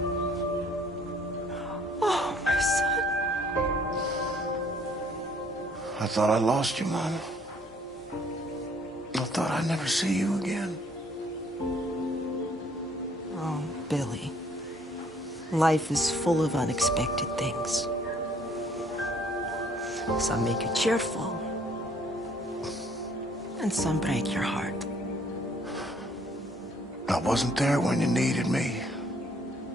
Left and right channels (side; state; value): both; normal; correlation 0.62